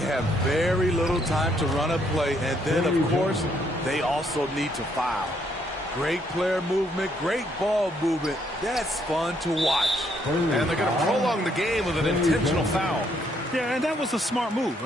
very little time to run a play, and then, of course, they also need to foul. Great player movement, great ball movement. That's fun to watch. And they're going to prolong the game with an intentional foul. Yeah, and that was a smart move.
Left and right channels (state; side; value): normal; both; correlation 0.71